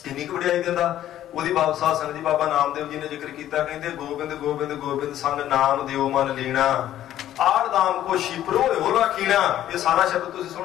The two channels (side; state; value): right; quieter; 12.3 dB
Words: इन्नी क वड्याई दिंदा। ਉਹਦੀ ਬਾਬਾ ਸਾਧ ਸੰਗਤ ਜੀ ਬਾਬਾ ਨਾਮਦੇਵ ਜੀ ਨੇ ਜ਼ਿਕਰ ਕੀਤਾ, ਕਹਿੰਦੇ ਗੋਬਿੰਦ ਗੋਬਿੰਦ ਗੋਬਿੰਦ ਸੰਗ ਨਾਮ ਦਿਓ ਮਨ ਲੀਣਾ, ਆੜ ਦਾਮ ਕੋ ਸ਼ਿਪਰੋ ਹੋ ਰਾਖੀਣਾ। ਇਹ ਸਾਰਾ ਸ਼ਬਦ ਤੁਸੀਂ